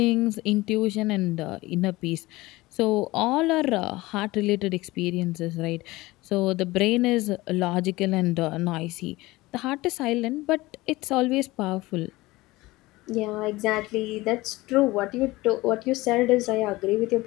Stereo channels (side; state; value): right; quieter; 20.0 dB